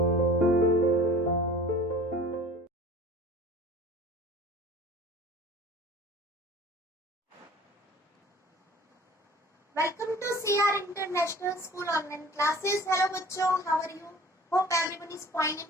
to CR International School online classes. Hello बच्चों, how are you? Hope everyone is fine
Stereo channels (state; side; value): normal; both; correlation 0.45